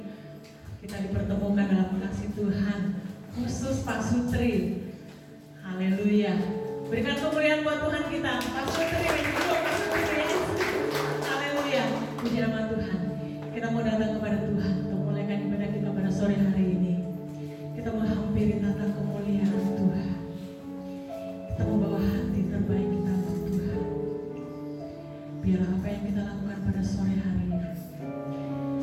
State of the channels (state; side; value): identical; both; correlation 1.00